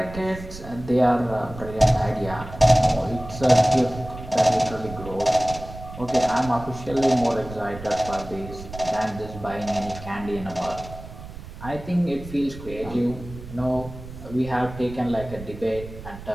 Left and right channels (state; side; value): noise; right; rumble, 13 dB below the sound